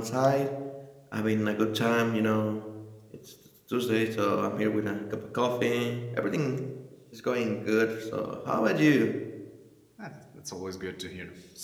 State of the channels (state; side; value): identical; both; correlation 1.00